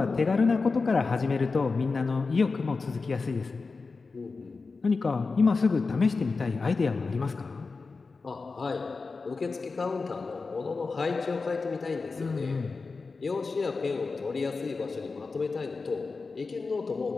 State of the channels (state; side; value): quieter; right; 4.2 dB